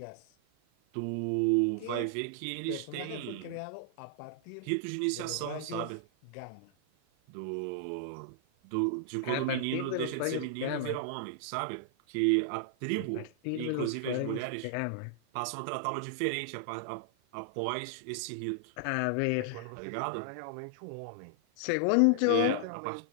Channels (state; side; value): different; both; correlation -0.01